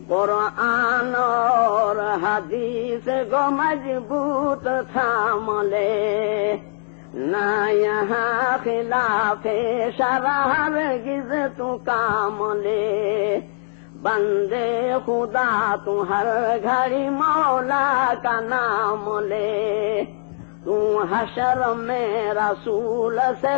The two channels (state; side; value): silent; right; digital silence